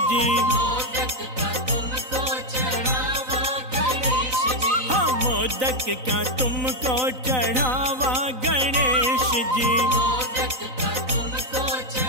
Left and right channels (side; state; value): left; late; 3.9 ms